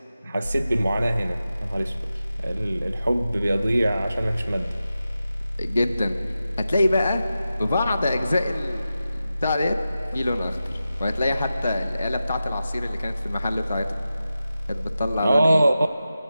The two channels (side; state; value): both; inverted; correlation -0.92